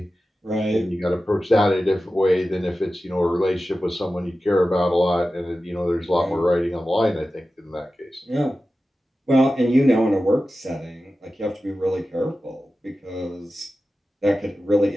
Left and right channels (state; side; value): normal; both; correlation 0.94